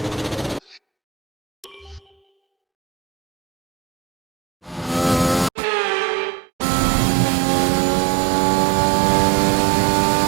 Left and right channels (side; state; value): left; drops out; at 5.5 s